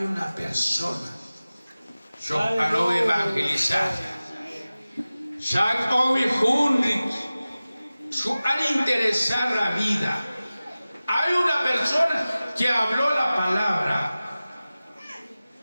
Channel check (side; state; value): both; inverted; correlation -0.97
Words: persona. Yo quiero evangelizar. Ya hoy juntos, su al interesar la vida. Hay una persona que habló la palabra.